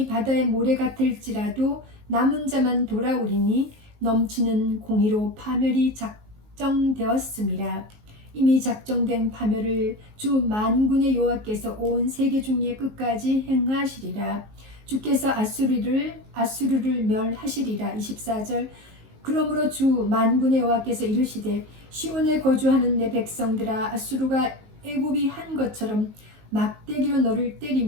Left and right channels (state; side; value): late; left; 19 ms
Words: 바다의 모래 같을지라도 남은 자만 돌아오리니 넘치는 공의로 파멸이 작정되었음이라. 이미 작정된 파멸을 주 만군의 여호와께서 온 세계 중의 끝까지 행하시리라. 주께서 아수르를 멸하시리라. 24절. 그러므로 주 만군의 여호와께서 이르시되 시온에 거주하는 내 백성들아, 아수르가 애굽이 한 것처럼 막대기로 너를